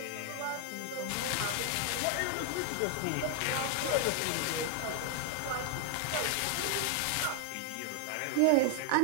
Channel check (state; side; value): different; both; correlation 0.00